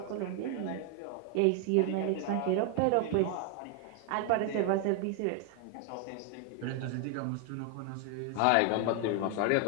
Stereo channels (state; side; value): different; both; correlation 0.00